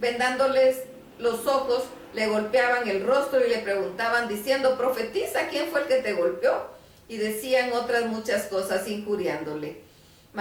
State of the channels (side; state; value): both; identical; correlation 1.00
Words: los ojos, le golpeaban el rostro y le preguntaban diciendo: profetiza, ¿quién fue el que te golpeó? Y decían otras muchas cosas injuriándole.